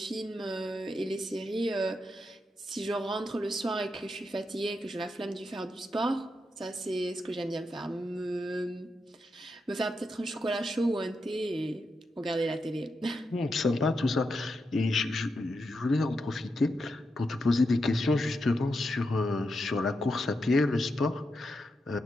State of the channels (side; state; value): both; normal; correlation 0.85